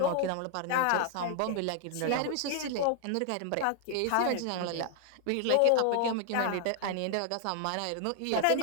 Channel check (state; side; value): different; both; correlation 0.00